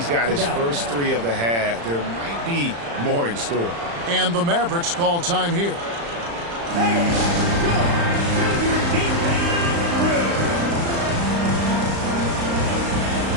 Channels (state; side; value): late; left; 35 ms